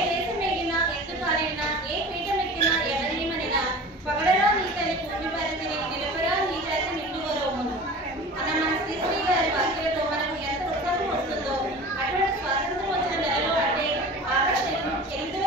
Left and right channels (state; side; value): normal; both; correlation 0.38